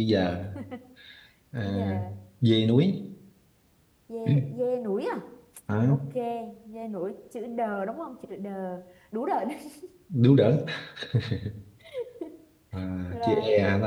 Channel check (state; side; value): identical; both; correlation 1.00